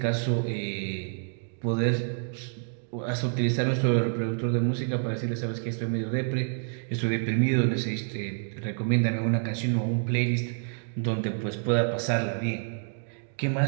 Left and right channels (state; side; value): silent; left; digital silence